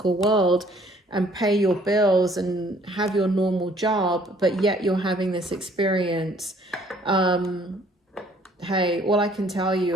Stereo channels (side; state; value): both; normal; correlation 0.59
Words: world and pay your bills and have your normal job, but yet you're having this experience. Hey, all I can tell you,